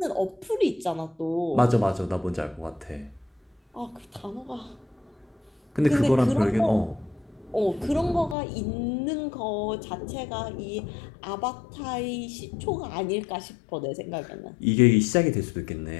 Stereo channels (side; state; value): right; drops out; at 8.3 s